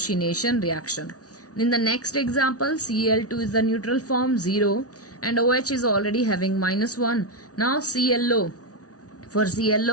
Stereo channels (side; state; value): right; late; 0.68 ms